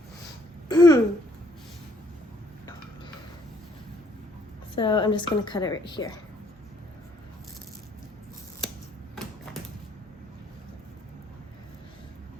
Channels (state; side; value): normal; both; correlation 0.66